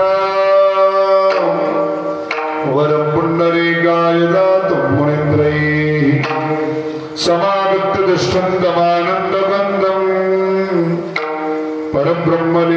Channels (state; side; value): identical; both; correlation 1.00